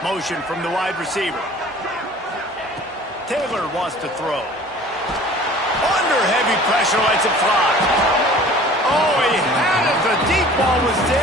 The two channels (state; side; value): normal; both; correlation 0.47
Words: Motion from the wide receiver. Taylor wants to throw. Under heavy pressure, lets it fly. Oh, he had it. The deep ball was